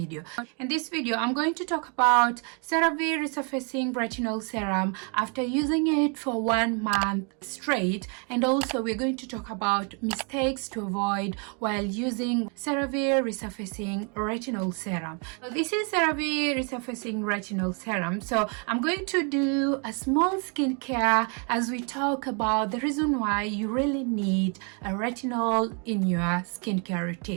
In this video, I'm going to talk about Cerave Resurfacing Retinol Serum after using it for 1 month straight, and also we're going to talk about mistakes to avoid while using Cerave Resurfacing Retinol Serum. So this is Cerave Resurfacing Retinol Serum. So I'm going to do a small skincare as we talk about the reason why you really need a retinol in your skincare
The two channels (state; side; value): quieter; left; 37.0 dB